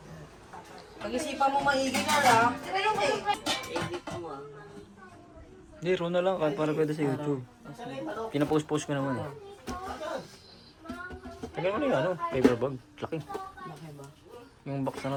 Pag-isipan mo maigi ka lang. Edit mo ah. Hindi, raw na lang. Para pwede sa YouTube. Pinapost-post ko naman eh. Tagal mo na yung ano, paper bag. Laki. Laki ba? Yung box na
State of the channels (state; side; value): identical; both; correlation 1.00